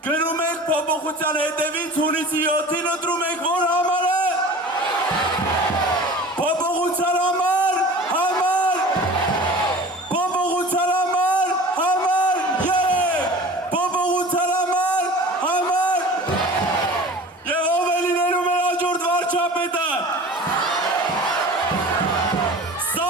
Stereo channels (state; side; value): normal; both; correlation 0.40